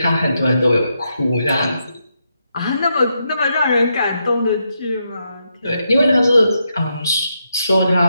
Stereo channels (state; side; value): inverted; both; correlation -0.82